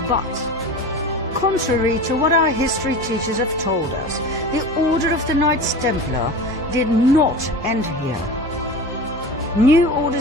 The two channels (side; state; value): both; normal; correlation 0.32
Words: But, contrary to what our history teachers have told us, the Order of the Knights Templar did not end here. New